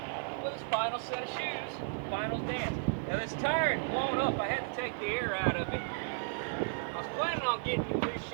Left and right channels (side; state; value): left; silent; digital silence